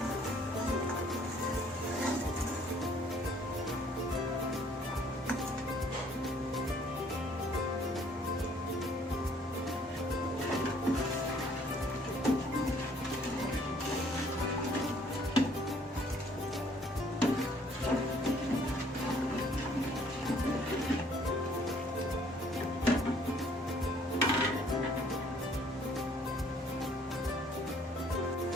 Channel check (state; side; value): normal; both; correlation 0.60